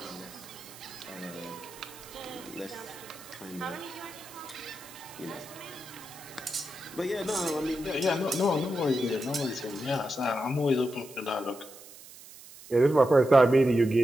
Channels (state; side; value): noise; right; hiss, 18 dB below the sound